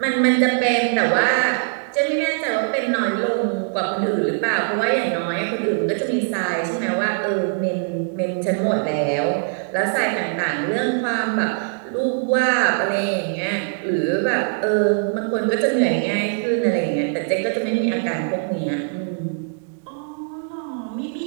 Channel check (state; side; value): silent; left; digital silence